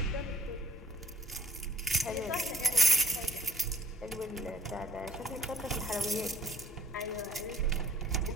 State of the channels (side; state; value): both; normal; correlation 0.54